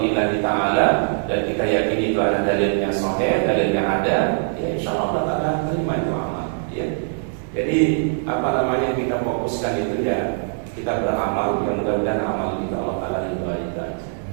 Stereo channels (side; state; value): left; silent; 64 dB below the other